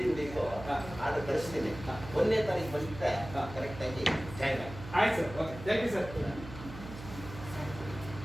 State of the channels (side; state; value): right; noise; hum, 12 dB below the sound